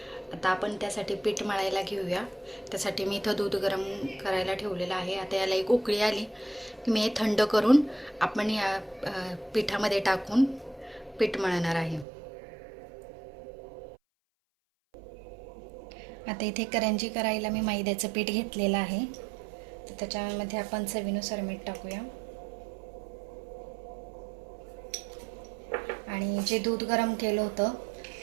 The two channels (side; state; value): left; drops out; at 12.1 s